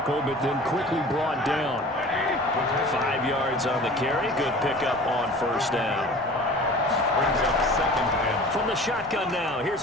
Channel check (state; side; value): normal; both; correlation 0.42